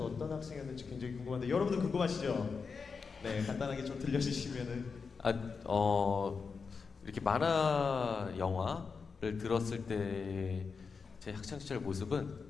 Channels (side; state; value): right; quieter; 5.2 dB